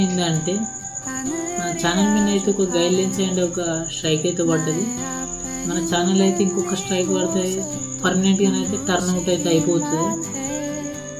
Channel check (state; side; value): identical; both; correlation 1.00